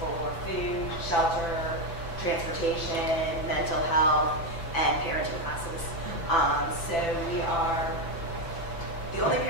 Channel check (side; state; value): right; late; 5.9 ms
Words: for food, shelter, transportation, mental health, and parenting classes. So we are, the only